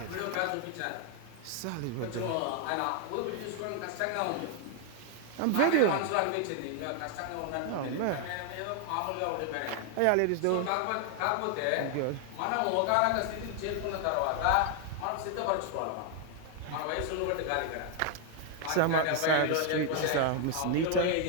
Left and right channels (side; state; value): both; different; correlation 0.00